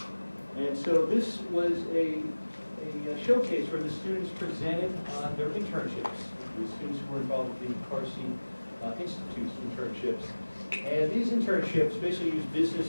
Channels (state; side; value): inverted; both; correlation -1.00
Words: And so this was a showcase where the students presented on their internships, the students who were involved with the CARSI Institute's internships. And these internships basically use